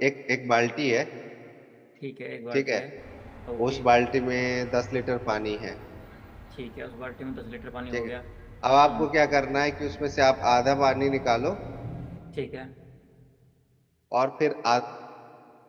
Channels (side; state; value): both; identical; correlation 1.00